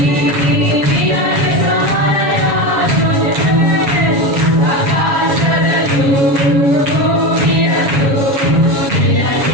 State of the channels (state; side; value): late; left; 7.3 ms